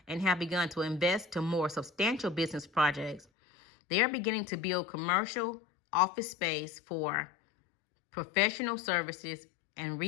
and have begun to invest to more substantial business projects. They are beginning to build commercial office space for professional services and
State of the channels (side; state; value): right; drops out; at 3.2 s